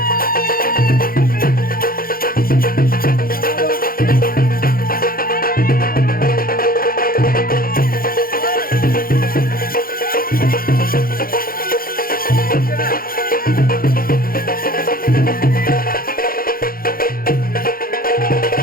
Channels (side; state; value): right; late; 0.42 ms